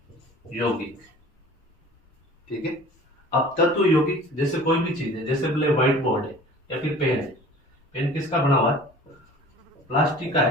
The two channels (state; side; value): normal; both; correlation 0.45